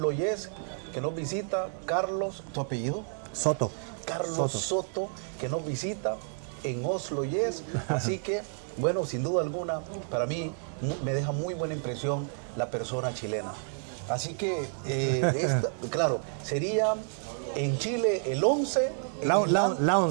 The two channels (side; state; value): left; silent; 58 dB below the other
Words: Yes, que nos visita, Carlos, ¿tu apellido? Soto. Carlos Soto, que nos visita en Oslo Yes. Así que, bueno, sin duda alguna, para mí me deja muy buena impresión la persona chilena. Así que, claro, sería en Chile el 11, en Islandia...